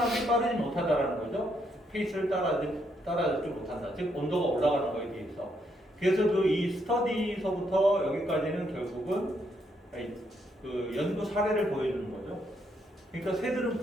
빠르지 못하다라는 거죠. 페이스를 따라주지 못한다. 즉 온도가 올라가는 거에 비해서. 그래서 이 스터디서부터 여기까지는 결국은 그 연구 사례를 보여주는 거죠. 그러니까 새들은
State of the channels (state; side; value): normal; both; correlation 0.75